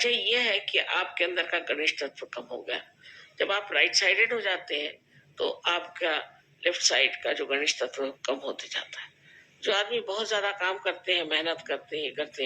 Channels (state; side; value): identical; both; correlation 1.00